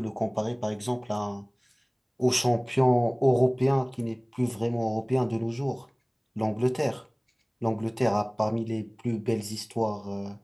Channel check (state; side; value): identical; both; correlation 1.00